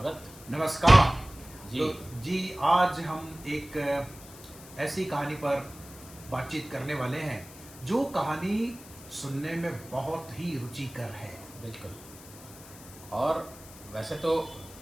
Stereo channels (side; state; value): left; noise; hiss, 18 dB below the sound